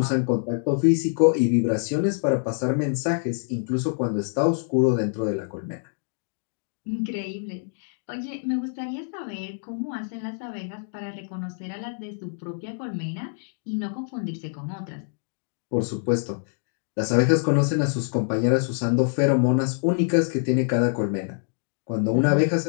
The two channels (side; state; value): right; silent; digital silence